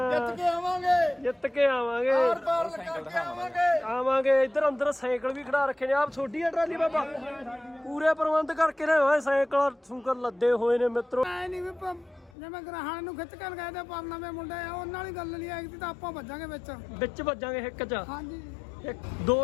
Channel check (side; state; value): right; drops out; at 12.3 s